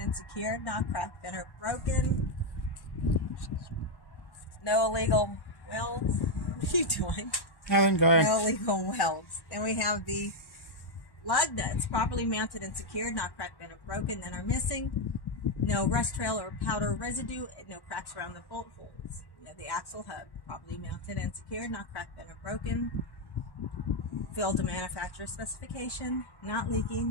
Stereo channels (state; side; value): late; right; 1.1 ms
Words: secured, not cracked, bent, or broken. No illegal welds. What are you doing? Nothing, go ahead. No illegal welds. Then we have the lug nuts, properly mounted and secured, not cracked, bent, or broken, none are missing. No rust trail or powder residue, and no cracks around the bolt holes. You have the axle hub, properly mounted and secured, not cracked, bent, or broken. Filled to manufacturer specification, not